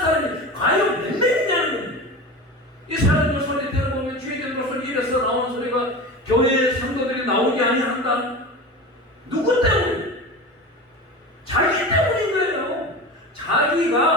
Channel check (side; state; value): both; normal; correlation 0.30